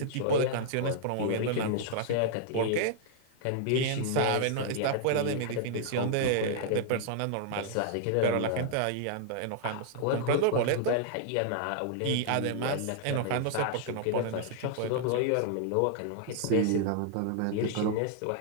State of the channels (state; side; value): different; both; correlation -0.01